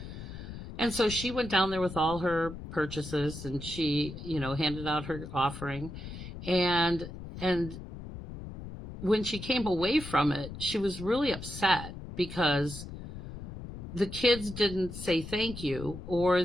And so she went down there with all her purchases, and she, handed out her offering. And when she came away from it, she was really upset because the kids didn't say thank you,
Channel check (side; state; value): left; noise; rumble, 11 dB below the sound